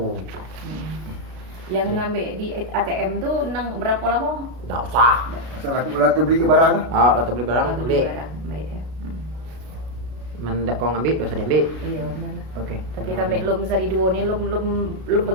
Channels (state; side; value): late; left; 33 ms